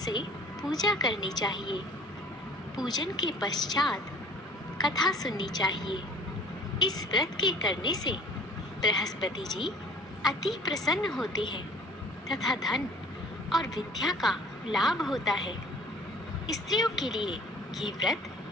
पूजा करनी चाहिए। पूजन के पश्चात कथा सुननी चाहिए। इस व्रत के करने से बृहस्पति जी अति प्रसन्न होते हैं तथा धन और विद्या का लाभ होता है। स्त्रियों के लिए ये व्रत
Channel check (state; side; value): normal; both; correlation 0.50